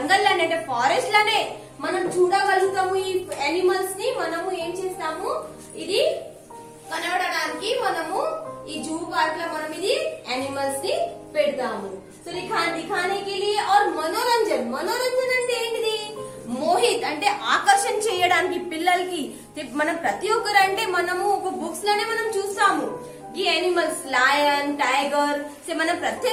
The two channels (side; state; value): both; identical; correlation 1.00